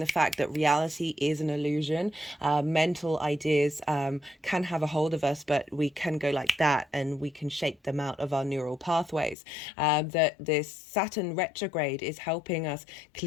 fact that reality is an illusion. Mental ideas can have a hold of us, but we can go like that and we can shape them out of our neural pathways. That this Saturn retrograde is helping us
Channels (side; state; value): right; drops out; at 9.3 s